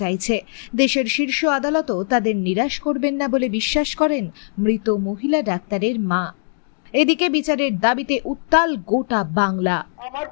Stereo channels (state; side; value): silent; right; 65 dB below the other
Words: দেশের শীর্ষ আদালতও তাদের নিরাশ করবেন না বলে বিশ্বাস করেন মৃত মহিলা ডাক্তারের মা। এদিকে বিচারের দাবিতে উত্তাল গোটা বাংলা। আমার